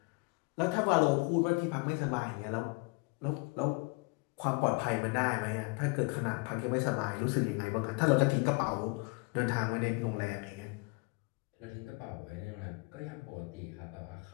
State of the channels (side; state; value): right; quieter; 28.0 dB